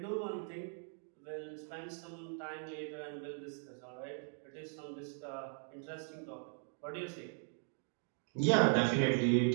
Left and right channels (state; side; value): silent; left; 52 dB below the other